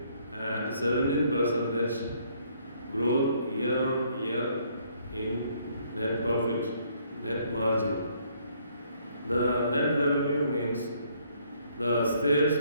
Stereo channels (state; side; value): inverted; both; correlation -0.66